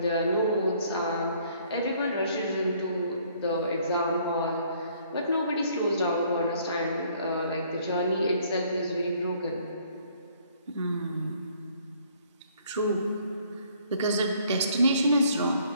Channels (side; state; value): both; inverted; correlation -0.62